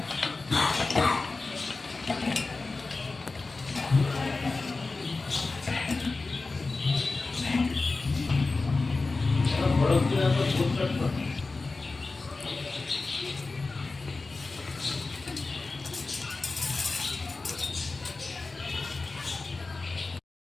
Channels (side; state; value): right; quieter; 3.7 dB